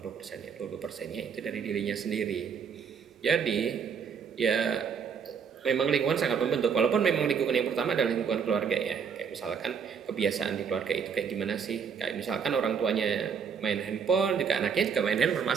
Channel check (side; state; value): left; quieter; 6.6 dB